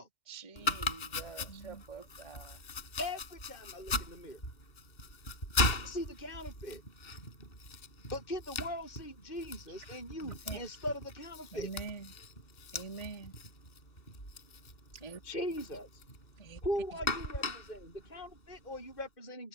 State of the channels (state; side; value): late; right; 2.1 ms